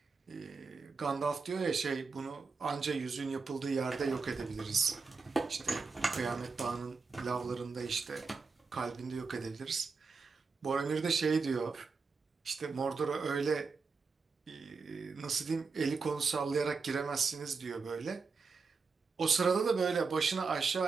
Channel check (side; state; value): left; quieter; 4.7 dB